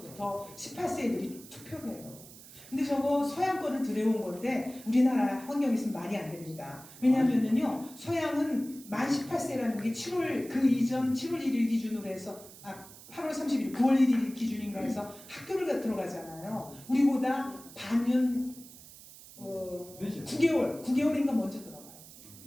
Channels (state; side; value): noise; right; hiss, 18 dB below the sound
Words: 18세 애들이 투표를 해요. 근데 저거 서양 거를 들여온 건데 우리나라 환경에서는 말이 안 됩니다. 왜냐하면요 서양은 만 18세라는 게 7월 그 이전 7월 1일 기준으로 해서 8월 30일 9월 1일 기준인가 해서 학교를 들어가잖아요. 우리보다 반년 9개월인가 먼저 들어가요.